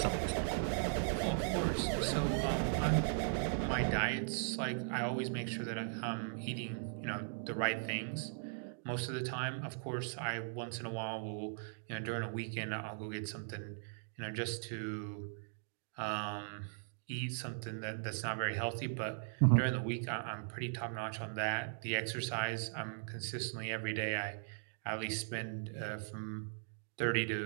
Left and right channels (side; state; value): left; silent; digital silence